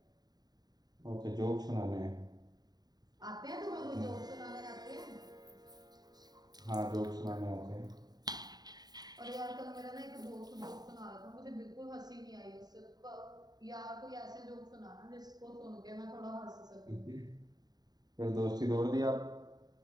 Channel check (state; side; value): late; left; 0.19 ms